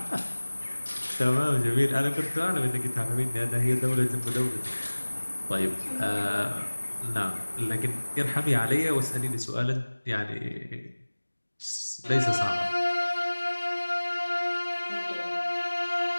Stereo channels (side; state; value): both; inverted; correlation -1.00